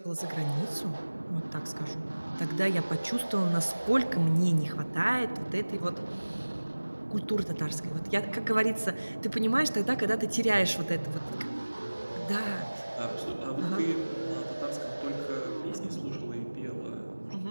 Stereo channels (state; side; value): inverted; both; correlation -1.00